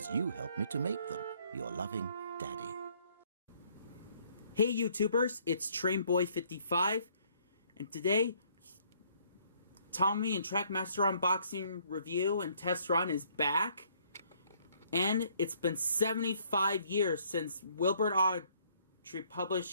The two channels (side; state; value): both; inverted; correlation -0.64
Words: you helped me to make them. Your loving Daddy. Hey YouTubers, it's TrainBoy55, and today, Tommy and Traickmaster unboxing review and test run is back. And it's been 75 years since Wilbur Awdry